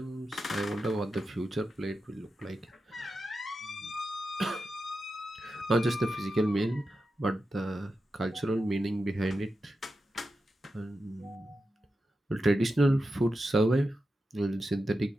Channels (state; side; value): normal; both; correlation 0.90